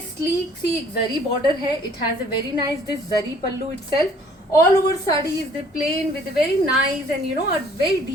sleek सी एक जरी border है. It has a very nice this zari pallu itself. All over sari is the plain with a very nice and a very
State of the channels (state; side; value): normal; both; correlation 0.57